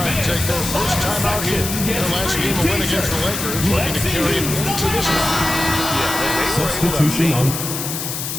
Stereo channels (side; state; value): left; noise; hiss, 5 dB below the sound